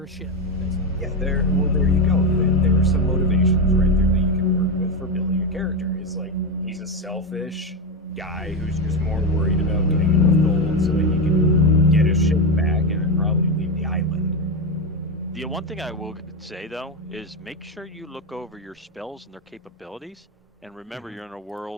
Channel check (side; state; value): both; normal; correlation 0.12